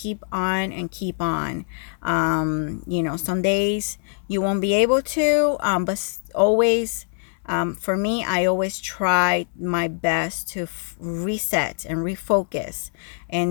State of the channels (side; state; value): right; silent; 61 dB below the other